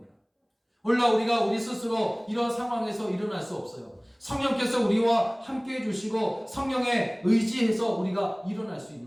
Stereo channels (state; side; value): identical; both; correlation 1.00